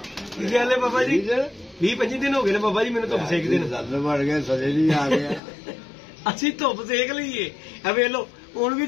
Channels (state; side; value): drops out; right; at 5.4 s